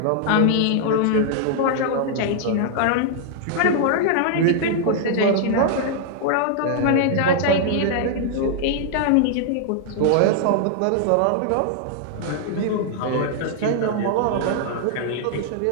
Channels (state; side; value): different; both; correlation -0.01